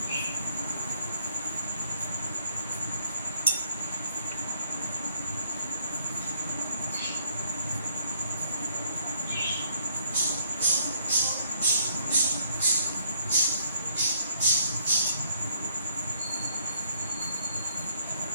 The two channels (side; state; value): both; inverted; correlation -0.67